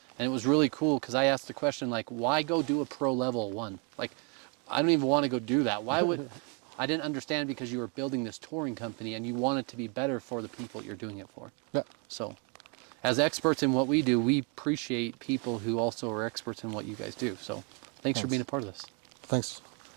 And it was really cool because I asked the question, like, why go do a pro level one? Like, I don't even want to go do that. Why would... I didn't understand, because you were building this touring company and you want it to be better for the people you're doing it for. Yeah. So as experts in what we do, we appreciate people who also are experts in what you guys do. So thanks for being a part of this. Thanks.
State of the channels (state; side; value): quieter; left; 35.2 dB